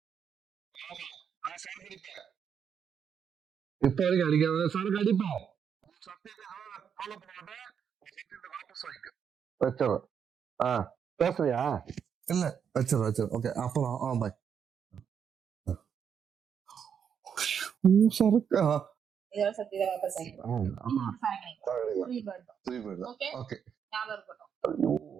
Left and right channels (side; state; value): left; quieter; 7.6 dB